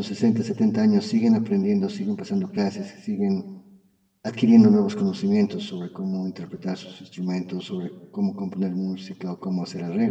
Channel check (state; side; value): identical; both; correlation 1.00